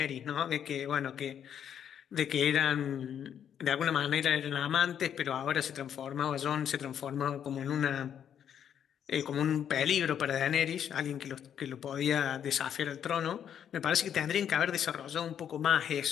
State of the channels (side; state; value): right; quieter; 9.0 dB